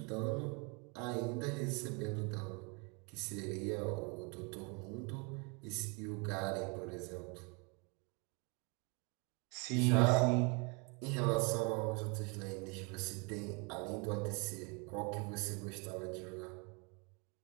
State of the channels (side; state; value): left; quieter; 32.4 dB